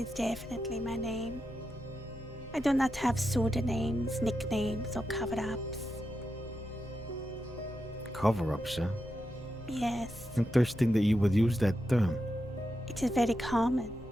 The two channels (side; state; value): both; normal; correlation 0.87